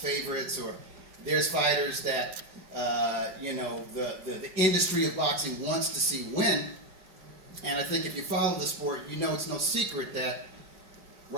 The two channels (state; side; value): late; left; 5.6 ms